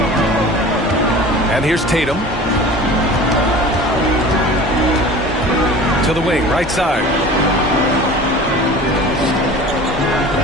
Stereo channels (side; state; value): both; normal; correlation 0.40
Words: And here's Tatum. To the wing, right side.